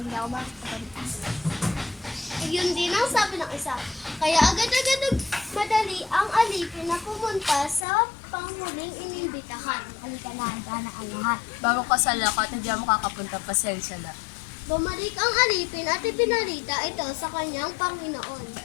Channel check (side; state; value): right; drops out; at 7.8 s